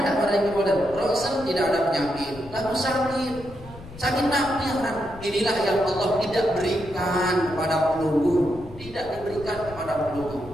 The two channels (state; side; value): noise; left; rumble, 17 dB below the sound